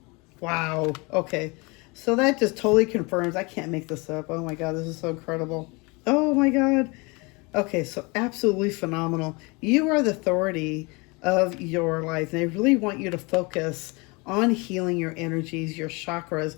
Wow. Okay. So that just totally confirms. I can't make this up. Oh my God, this is so incredible. Oh my God. Okay, so absolutely phenomenal. You are the authority of your life. And they really want you to focus on healing your energies, your chakras.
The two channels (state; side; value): quieter; right; 27.6 dB